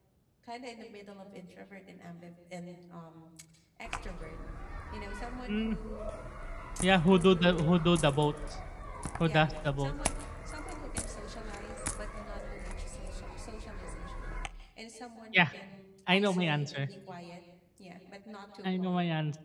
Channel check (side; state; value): both; identical; correlation 1.00